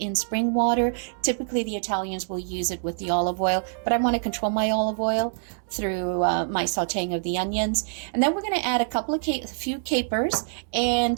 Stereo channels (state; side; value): silent; left; digital silence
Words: spring water. Typically the Italians will use it with the olive oil, but I want to control my olive oil through my sautéing of the onions. And then we're going to add a few capers,